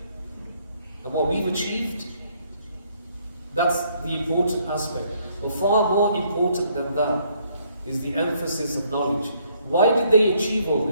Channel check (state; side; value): inverted; both; correlation -0.68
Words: and what we've achieved, that's the important aspect. But far more important than that is the emphasis of knowledge. Why did they achieve all